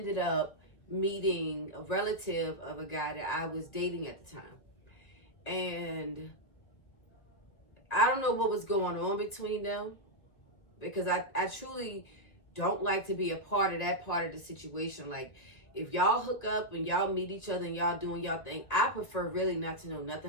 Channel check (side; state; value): right; late; 2.0 ms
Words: up meeting a relative of a guy that I was dating at the time. And I don't know what was going on between them, because I truly don't like to be a part of that part of the situation. Like, if y'all hook up and y'all meet each other and y'all doing y'all thing, I prefer really not to know